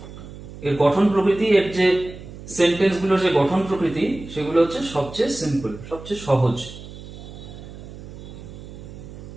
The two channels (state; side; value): noise; right; hum, 14 dB below the sound